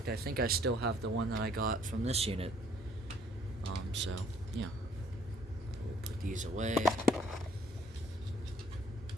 I think I still have the one that I got from this unit. So yeah, we'll put these away.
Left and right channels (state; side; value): normal; both; correlation 0.61